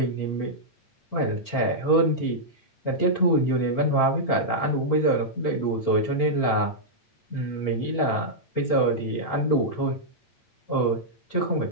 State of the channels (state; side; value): late; right; 8.7 ms